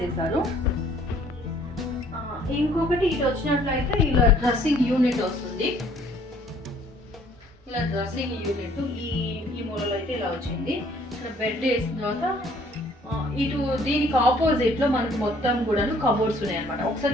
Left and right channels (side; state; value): both; normal; correlation 0.59